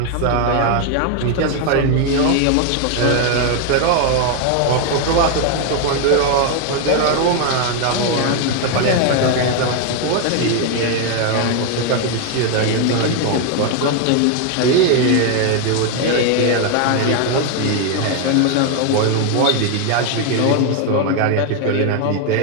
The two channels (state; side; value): different; both; correlation 0.01